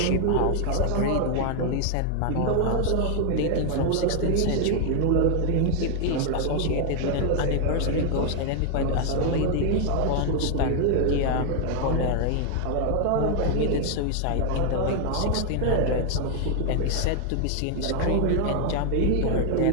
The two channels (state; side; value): different; both; correlation 0.00